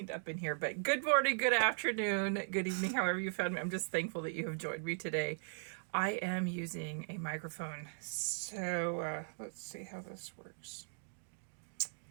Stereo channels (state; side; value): silent; left; digital silence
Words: up in here, but good morning, good afternoon, good evening, however you found me. I'm just thankful that you have joined me today. I am using a microphone, so let's see how this works.